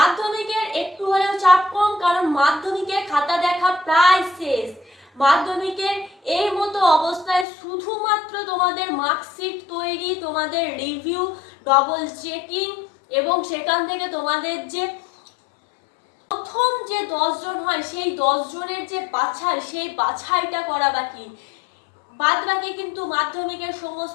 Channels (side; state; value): right; drops out; at 7.5 s